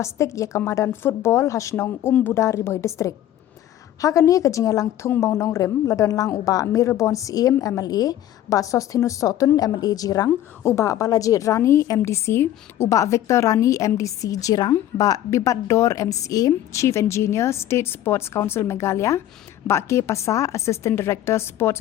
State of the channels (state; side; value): quieter; right; 12.5 dB